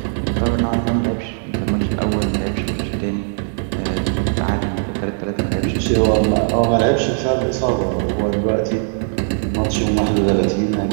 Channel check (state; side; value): silent; left; digital silence